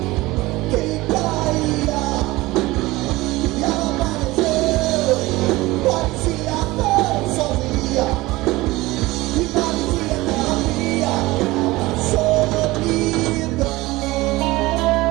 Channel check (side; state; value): left; quieter; 19.9 dB